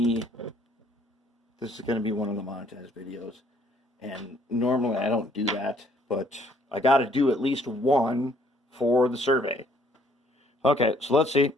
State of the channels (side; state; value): both; normal; correlation 0.63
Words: one of the monetized videos. And normally I don't do that, but I got to do at least one for the survey. Okay, so let's see.